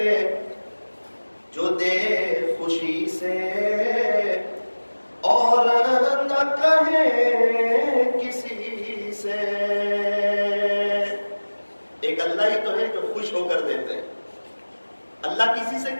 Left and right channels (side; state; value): both; inverted; correlation -1.00